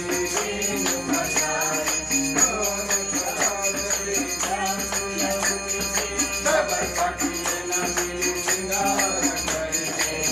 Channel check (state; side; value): identical; both; correlation 1.00